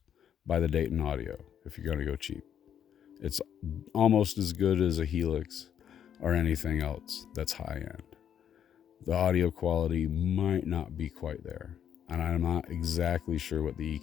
Buy the Dayton Audio if you're going to go cheap. It's almost as good as a Helix or anything else that's high end. The audio quality might not be quite there, and I'm not exactly sure what the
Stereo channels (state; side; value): quieter; right; 9.1 dB